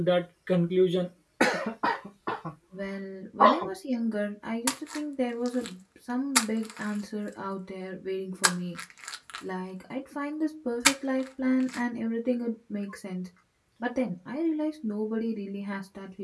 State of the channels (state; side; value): identical; both; correlation 1.00